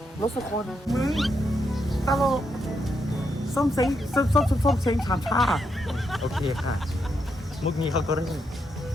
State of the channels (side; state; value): both; normal; correlation 0.80